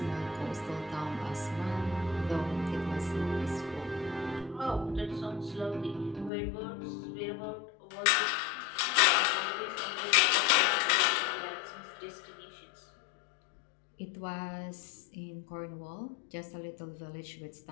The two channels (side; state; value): right; drops out; at 6.3 s